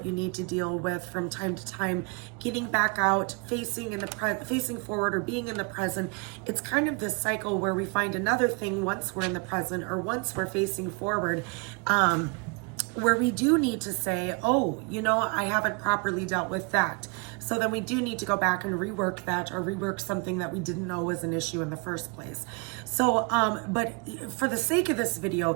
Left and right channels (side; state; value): left; quieter; 32.3 dB